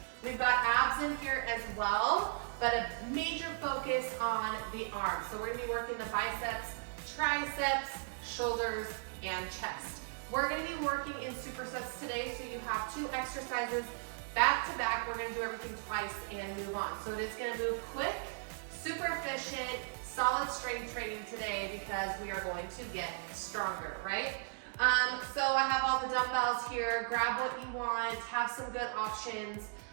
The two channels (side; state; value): left; silent; digital silence